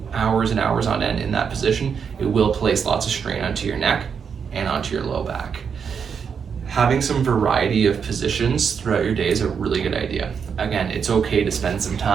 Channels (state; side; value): quieter; left; 6.6 dB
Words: hours and hours on end in that position, it will place lots of strain onto your neck and onto your low back. Having some variety of positions throughout your day is a really good idea. Again, it's okay to spend some